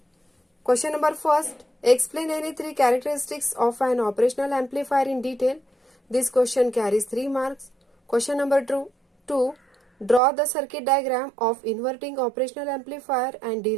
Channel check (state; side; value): drops out; left; at 10.2 s